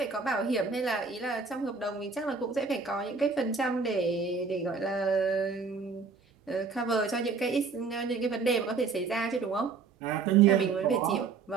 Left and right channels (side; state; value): left; quieter; 4.9 dB